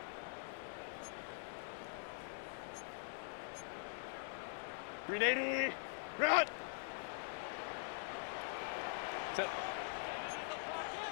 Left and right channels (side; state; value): right; silent; digital silence